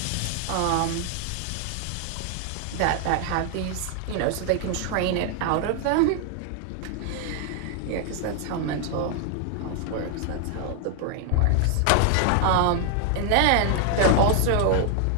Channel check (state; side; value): different; both; correlation 0.00